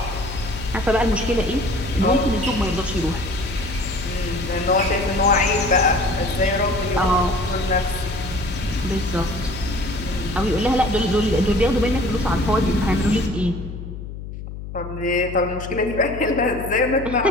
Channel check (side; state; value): left; noise; hum, 10 dB below the sound